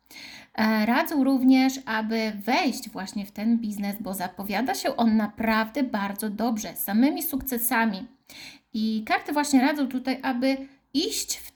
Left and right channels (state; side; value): identical; both; correlation 1.00